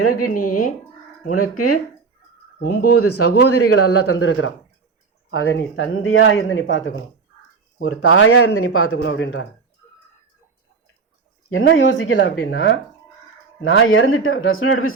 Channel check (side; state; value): left; quieter; 4.9 dB